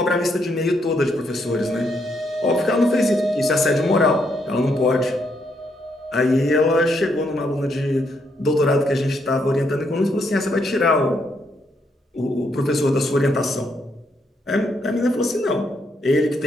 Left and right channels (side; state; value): both; normal; correlation 0.76